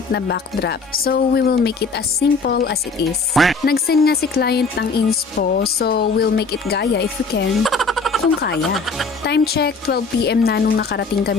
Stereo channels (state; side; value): quieter; right; 4.2 dB